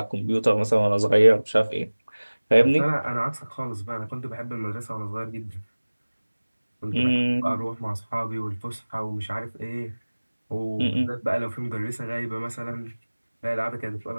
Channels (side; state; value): both; inverted; correlation -1.00